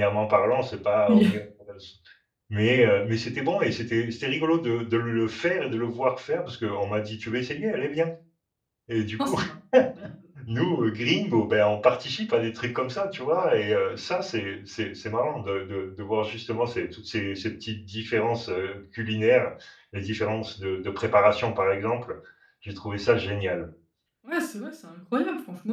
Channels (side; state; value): both; identical; correlation 1.00